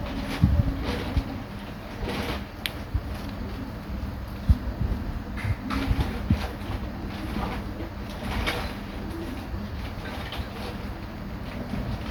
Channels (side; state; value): both; identical; correlation 1.00